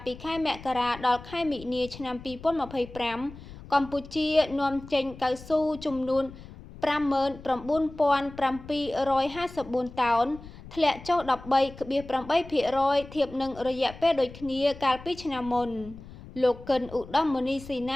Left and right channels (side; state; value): left; noise; rumble, 17 dB below the sound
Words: ពីខែមករាដល់ខែមិនិនាឆ្នាំ2025កម្ពុជានាំចេញកៅស៊ូចំនួន59,754តោនធ្លាក់ចុះ13.8%ធៀបនឹងរយៈពេលដូចគ្នាកាលពីឆ្នាំមុនលោកកិនឧត្តមមុនីស៊ីណ